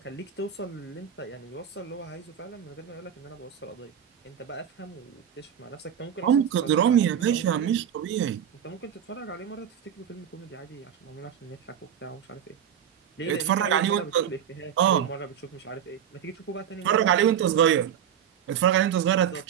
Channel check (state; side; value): quieter; left; 9.1 dB